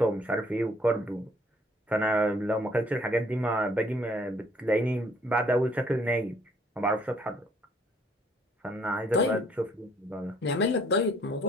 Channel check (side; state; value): both; normal; correlation 0.62